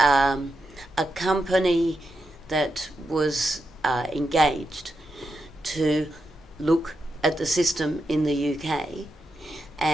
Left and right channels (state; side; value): normal; both; correlation 0.86